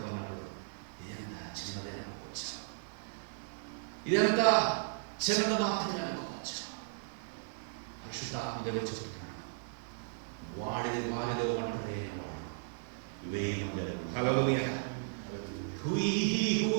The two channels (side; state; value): left; silent; digital silence